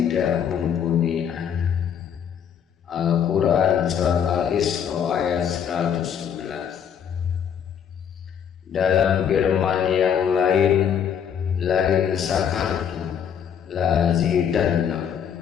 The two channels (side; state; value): right; quieter; 8.2 dB